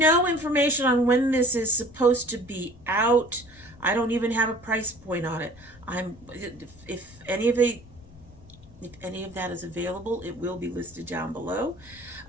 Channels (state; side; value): noise; left; rumble, 22 dB below the sound